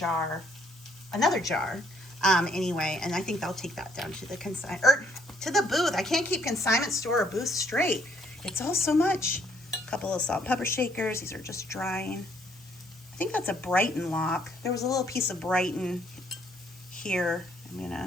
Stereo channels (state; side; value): normal; both; correlation 0.67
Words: another jar. Anyway, and I think I'll take that down to the to the booth. I can't keep consignment store or booth straight. It's all so much. A couple of salt and pepper shakers. These are just drying. I think that's a Brighton lock. There was a little piece of Brighton here.